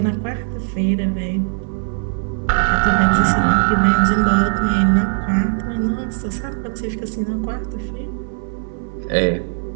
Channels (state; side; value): silent; left; 63 dB below the other